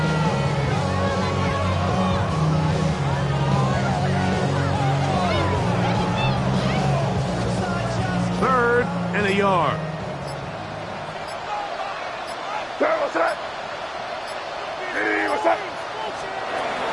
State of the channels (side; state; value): both; identical; correlation 1.00